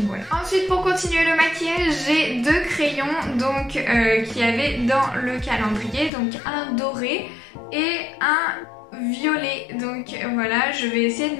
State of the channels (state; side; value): drops out; right; at 6.1 s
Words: voilà. Ensuite pour continuer le maquillage, j'ai deux crayons donc qu'il y avait dans le calendrier, donc un doré et un violet. Donc voilà, je vais essayer de